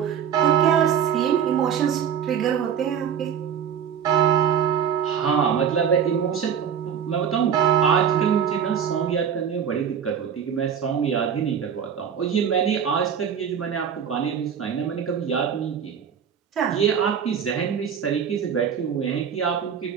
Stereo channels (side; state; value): left; quieter; 8.0 dB